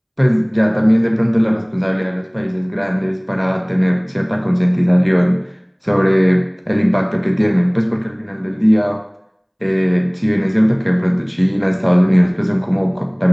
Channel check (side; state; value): both; identical; correlation 1.00